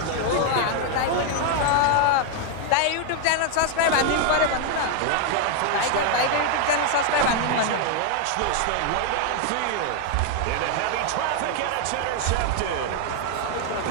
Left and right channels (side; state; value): both; different; correlation 0.00